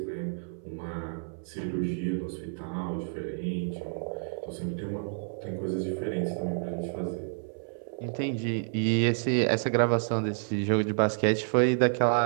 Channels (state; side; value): silent; left; 58 dB below the other